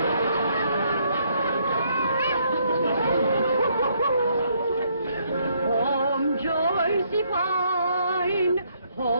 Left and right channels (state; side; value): inverted; both; correlation -0.70